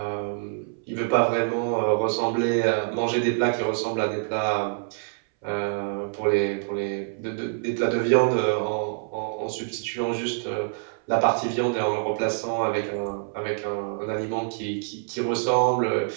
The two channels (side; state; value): left; silent; 61 dB below the other